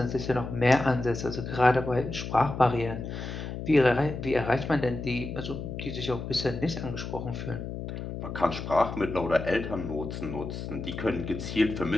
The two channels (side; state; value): left; noise; hum, 7 dB below the sound